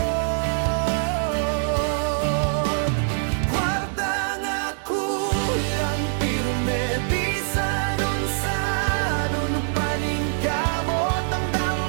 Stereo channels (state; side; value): silent; left; 63 dB below the other